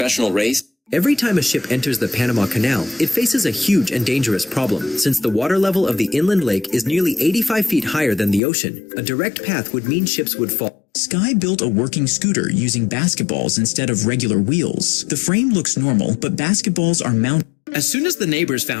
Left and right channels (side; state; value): right; drops out; at 8.4 s